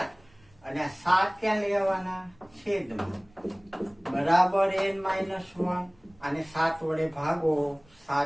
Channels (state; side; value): noise; right; rumble, 29 dB below the sound